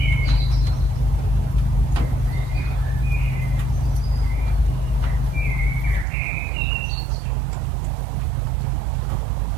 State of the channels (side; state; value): left; drops out; at 6.1 s